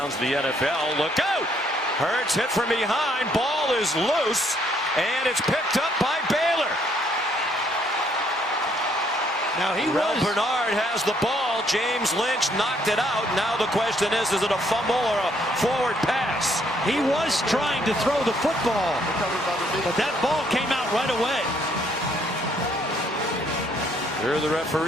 of the NFL. Look out! Hurts hit from behind. Ball is loose, and it's picked up by Baylor. Now Rel Bernard has the ball. James Lynch knocked it out. Now the question is it a fumble or a forward pass? He was trying to throw the football, but that ball came out right away. Hear the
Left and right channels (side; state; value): both; normal; correlation 0.68